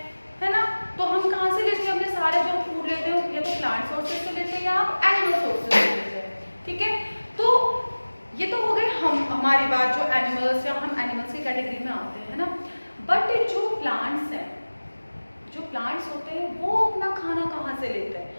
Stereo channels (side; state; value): both; inverted; correlation -1.00